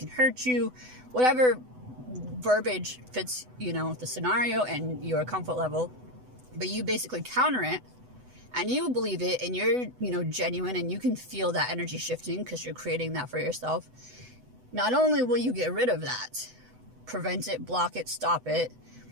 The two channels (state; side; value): late; left; 8.0 ms